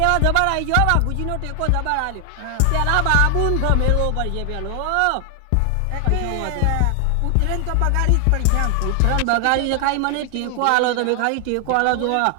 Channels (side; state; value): both; different; correlation 0.00